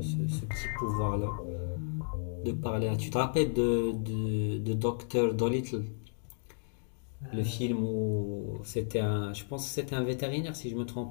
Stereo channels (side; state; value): right; silent; digital silence